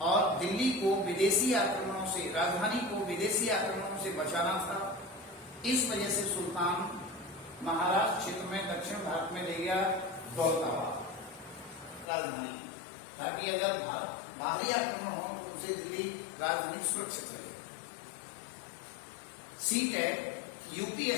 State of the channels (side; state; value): right; drops out; at 12.1 s